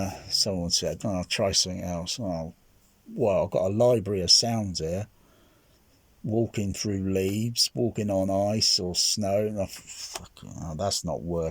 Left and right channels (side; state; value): both; identical; correlation 1.00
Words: Someone said, I'll try something else. Oh, well, I've got a library of sounds here. Walking through leaves, walking on ice or snow, and that's not